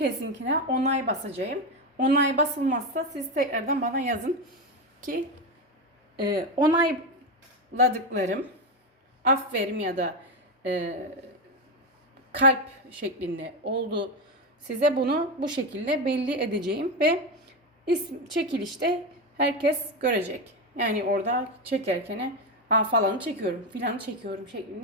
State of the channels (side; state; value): both; normal; correlation 0.13